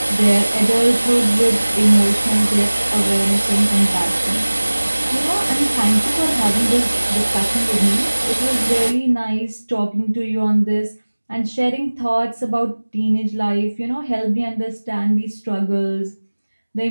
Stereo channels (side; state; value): both; inverted; correlation -1.00